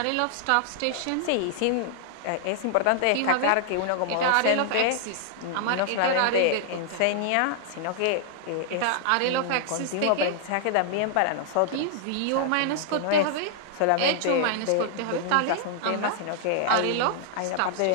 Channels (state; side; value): different; both; correlation -0.01